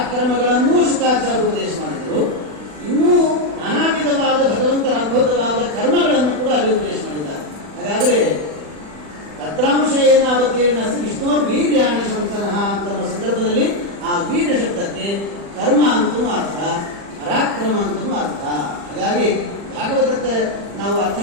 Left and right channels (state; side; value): late; left; 40 ms